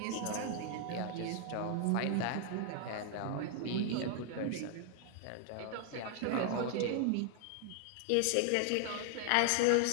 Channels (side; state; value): both; different; correlation 0.00